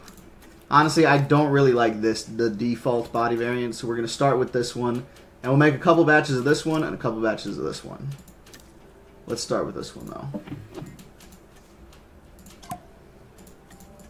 Honestly, I don't really like the default body variant, so we're going to start with this one. And we'll make a couple batches of this one and a couple batches of this one. Let's start with this one, though.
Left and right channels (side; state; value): both; identical; correlation 1.00